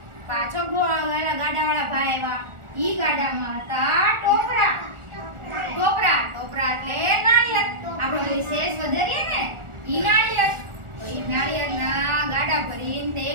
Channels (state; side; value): late; left; 1.4 ms